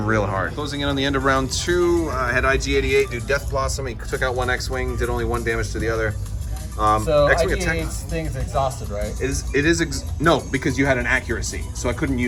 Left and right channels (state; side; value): identical; both; correlation 1.00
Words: real hard. Closing in on the end of round 2, I had IG-88 do Death Blossom. He took out 1 X-Wing, did only 1 damage to the other. So X-Wing IG-88's thing is exhausted, right? No, because you had an accuracy, so I couldn't